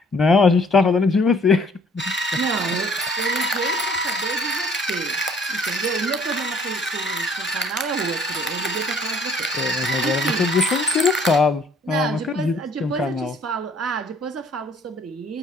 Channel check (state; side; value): normal; both; correlation 0.59